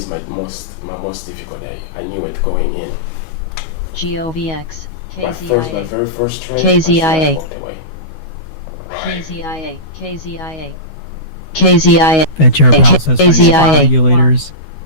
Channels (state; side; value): late; right; 12 ms